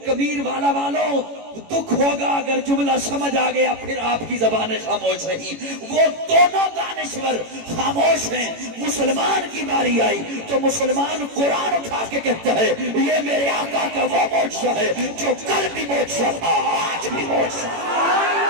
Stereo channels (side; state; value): left; late; 18 ms